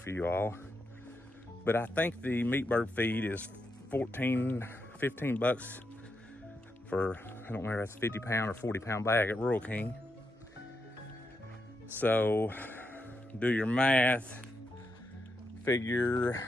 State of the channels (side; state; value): both; normal; correlation 0.84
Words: you all, but I think the meat bird feed is 15 bucks for, I don't remember if that's 50 pound or 40 pound bag at Rural King. So do your math, figure